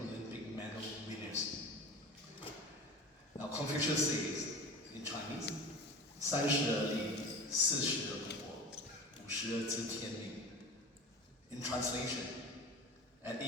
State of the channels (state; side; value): normal; both; correlation 0.34